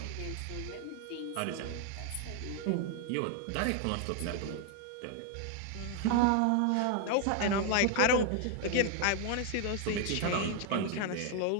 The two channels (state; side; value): different; both; correlation 0.00